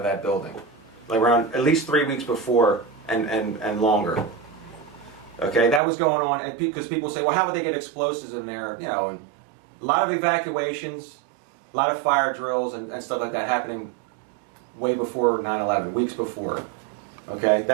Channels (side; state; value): left; drops out; at 5.8 s